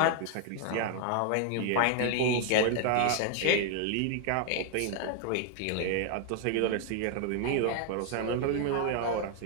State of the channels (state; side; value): different; both; correlation 0.00